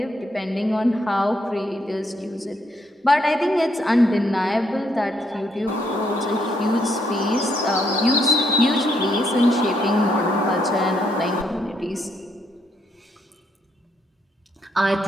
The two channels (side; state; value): both; normal; correlation 0.73